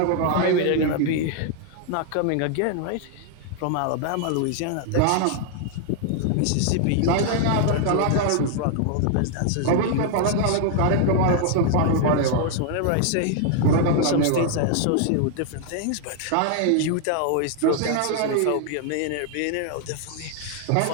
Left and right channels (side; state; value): both; different; correlation 0.00